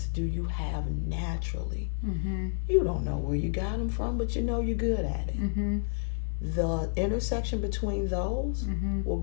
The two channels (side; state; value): right; silent; digital silence